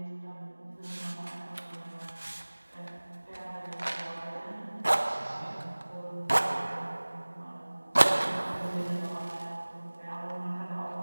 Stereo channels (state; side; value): inverted; both; correlation -1.00